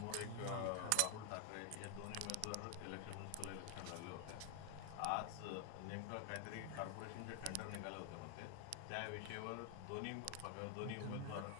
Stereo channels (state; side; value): different; both; correlation 0.00